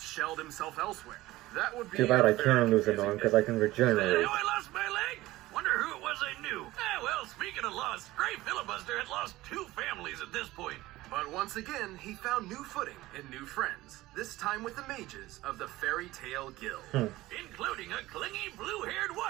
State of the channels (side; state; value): left; quieter; 17.7 dB